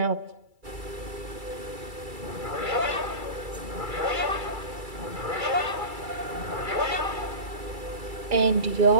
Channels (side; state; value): left; late; 2.3 ms